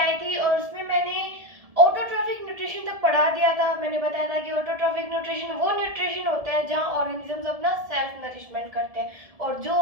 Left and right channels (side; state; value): left; late; 1.7 ms